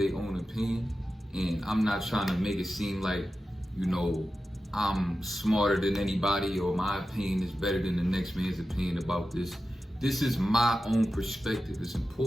own opinion, and I'm not trying to make it seem like I'm smarter than anybody or my opinion is better than the next man's opinion about this. This is my own perspective. It's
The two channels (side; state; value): both; normal; correlation 0.92